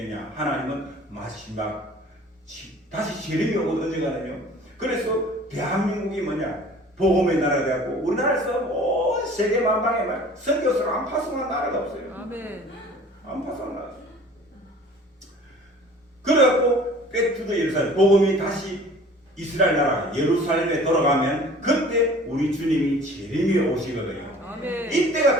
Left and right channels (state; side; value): normal; both; correlation 0.47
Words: 하나님은 마지막 다시 재림이 오고 언젠가는요. 그래서 대한민국이 뭐냐? 복음의 나라가 되었고 우리나라에서 온 세계 만방에 막 선교사를 안 파송한 나라가 없어요. 아멘. 안 파송한 나라. 그래갖고 백투더 예루살렘 복음이 다시 이스라엘 나라 예루살렘에 돌아가면 그때 우리 주님이 재림이 오시거든요. 아멘. 이때가